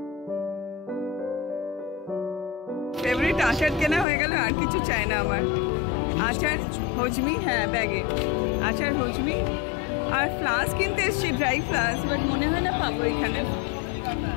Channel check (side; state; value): right; drops out; at 4.0 s